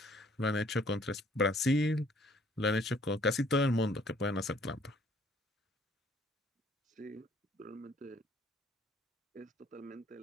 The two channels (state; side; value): normal; both; correlation 0.60